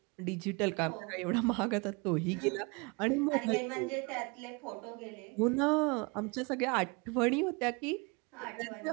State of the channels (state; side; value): quieter; left; 28.9 dB